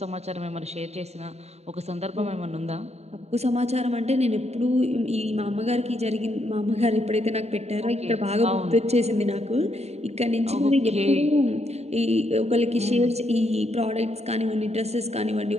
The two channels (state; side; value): late; left; 0.31 ms